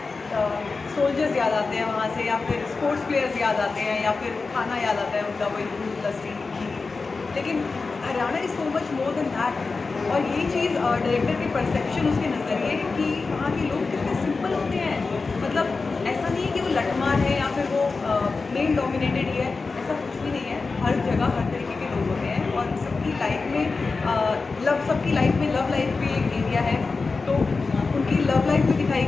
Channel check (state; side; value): quieter; right; 4.2 dB